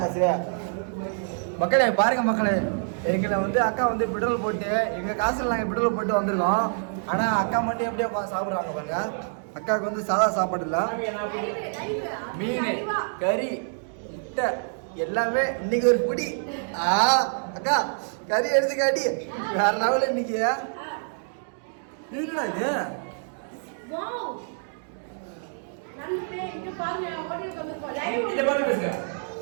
சரியா மக்களே பாருங்க மக்களே எங்களை வந்து அக்கா வந்து பெட்ரோல் போட்டு எங்கள் காசில் நாங்கள் பெட்ரோல் போட்டு வந்திருக்கோம் ஆனால் அக்கா மட்டும் எப்படியோ சாப்பிட்றாங்க பாருங்க அக்காவுக்கு வந்து சாதா சாப்பாடு இல்லை மீன் கறி முட்டை எல்லாமே இன்னைக்கு ஒரு பிடி அக்கா கறி எடுத்து காட்டி வேற லெவலில் இன்னைக்கு என்னடா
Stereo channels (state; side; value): silent; left; digital silence